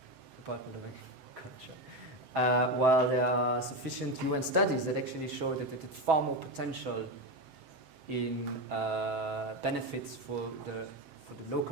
Department of Agriculture. While there are sufficient UN studies that actually show that it had far more potential in benefits for the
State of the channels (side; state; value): left; late; 7.7 ms